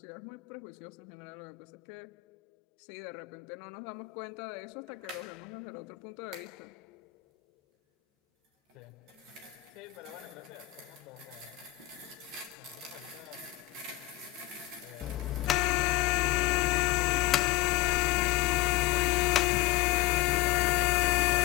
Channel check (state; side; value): quieter; right; 17.6 dB